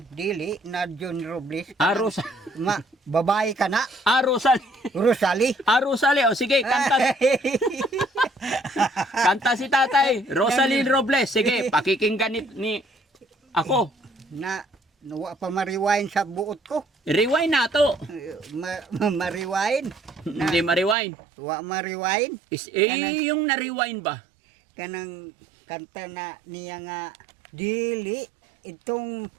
dili na John Robles Ah, kanang babae ka na Ah, Rosalie. Rosalie. Ah, Rosalie. Oh, sige, kanta. Kanta si tatay. Rosalie Robles. Sige, pakikinggan ni ako. Na nawa pa mariwain sa buot ko. Rewind na to. Mariwain. Hindi ma-rewind. Wa mariwain. Yung na-rewind ba? Kanang kanta na niya nga dili itong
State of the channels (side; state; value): left; drops out; at 21.0 s